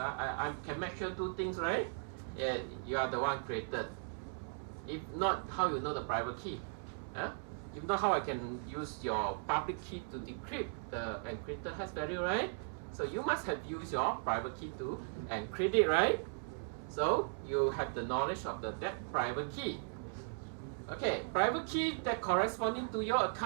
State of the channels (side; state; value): left; silent; 53 dB below the other